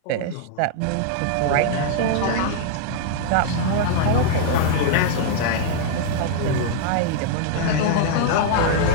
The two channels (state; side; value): different; both; correlation -0.01